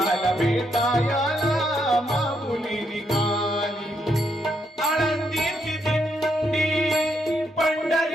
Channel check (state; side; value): normal; both; correlation 0.77